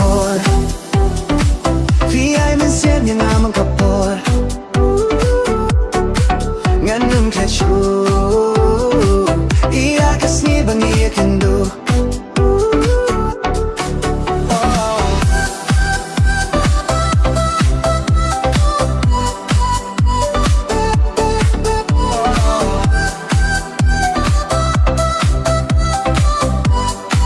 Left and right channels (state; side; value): identical; both; correlation 1.00